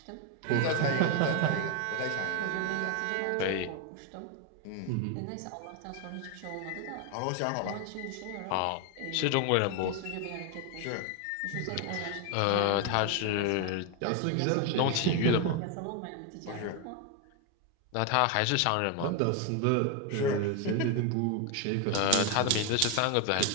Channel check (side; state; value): both; different; correlation 0.01